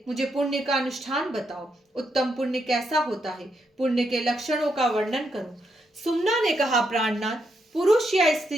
मुझे पुण्य का अनुष्ठान बताओ। उत्तम पुण्य कैसा होता है? पुण्य के लक्षणों का वर्णन करो। सुमना ने कहा, प्राणनाथ, पुरुष या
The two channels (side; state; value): both; normal; correlation 0.80